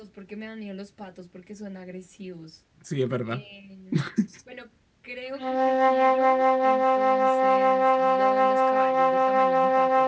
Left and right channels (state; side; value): identical; both; correlation 1.00